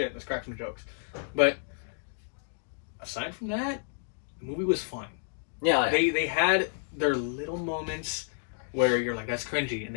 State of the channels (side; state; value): right; silent; digital silence